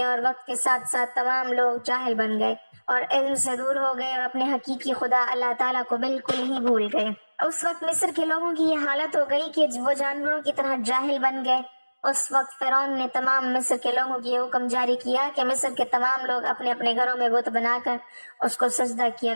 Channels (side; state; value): both; inverted; correlation -1.00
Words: اور وقت کے ساتھ ساتھ تمام لوگ جاہل بن گئے اور علم سے دور ہو گئے اور اپنے حقیقی خدا اللہ تعالیٰ کو بالکل ہی بھول گئے۔ اس وقت مصر کے لوگوں کی یہ حالت ہو گئی کہ وہ جانوروں کی طرح جاہل بن گئے۔ اس وقت فرعون نے تمام مصر کے لوگوں کی یہ حکم جاری کیا کہ مصر کے تمام لوگ اپنے اپنے گھروں میں بت بنا کر اس کو سجدہ کیا